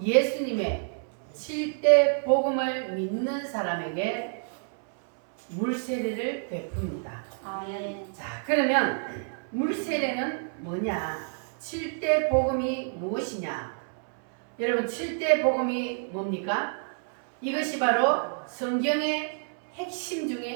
7대 복음을 믿는 사람에게 물 세례를 베풉니다. 아멘. 자, 그러면 물 세례는 뭐냐? 7대 복음이 무엇이냐? 여러분, 7대 복음이 뭡니까? 이것이 바로 성경의 핵심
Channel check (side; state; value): left; silent; 59 dB below the other